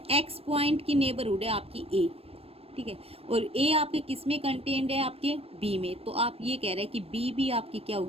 एक्स पॉइंट की नेबरहुड है आपकी ए, ठीक है, और ए आपके किस में कंटेन्ड है, आपके बी में, तो आप ये कह रहे हैं कि बी भी आपकी क्या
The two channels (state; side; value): late; left; 0.28 ms